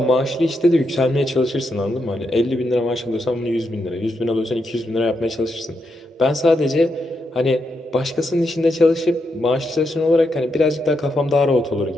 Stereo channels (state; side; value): normal; both; correlation 0.82